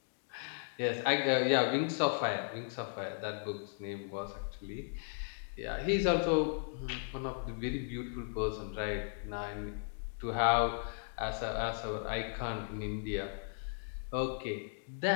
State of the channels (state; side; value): silent; right; digital silence